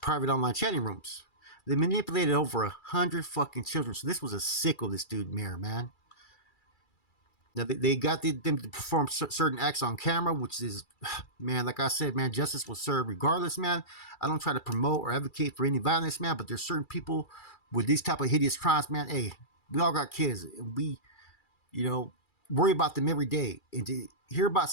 online chatting rooms. They manipulated over 100 fucking children. So this was a sicko, this dude, Mayer, man. Now, they got them to perform certain acts on camera, which is, man, like I said, man, justice was served regardless, man. I don't try to promote or advocate for any violence, man, but there's certain people with these type of hideous crimes, man. Hey, we all got kids, and we, worry about them every day. And to hear about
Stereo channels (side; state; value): right; late; 2.3 ms